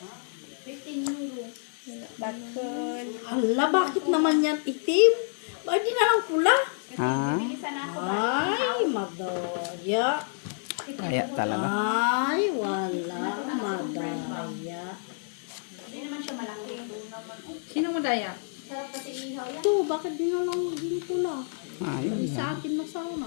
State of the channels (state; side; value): silent; right; 58 dB below the other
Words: 15 euro. Stakol. Hala, bakit naman yan itim? Bakit di na lang pula? Ha? Bilisan na ako ba? Ay, madaya. Kaya talaga. Ay, wala. Madaya. Hindi naman siya malaki. Sino madaya? Sarap kasi ihaw yan. Ito, bakit di na lang hindi pula? Ay, Bali sa akin na